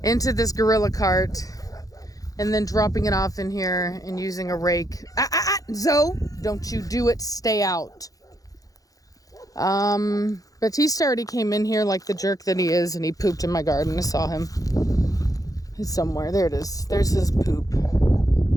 into this gorilla cart and then dropping it off in here and using a rake. Zoe, don't you do it, stay out. Batista already came in here like the jerk that he is, and he pooped in my garden. I saw him. He's somewhere. There it is. There's his poop.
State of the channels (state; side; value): late; right; 0.17 ms